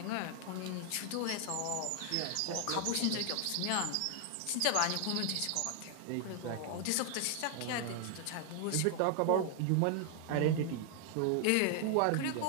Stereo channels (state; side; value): different; both; correlation 0.00